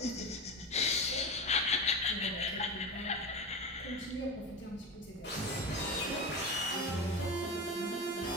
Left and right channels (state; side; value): normal; both; correlation 0.24